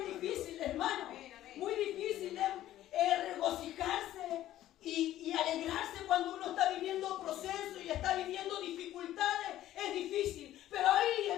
difícil, hermano. Amén, amén. Muy difícil regocijarse y alegrarse cuando uno está viviendo procesos y está viviendo dificultades. Es difícil. Pero ahí,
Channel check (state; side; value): quieter; right; 13.5 dB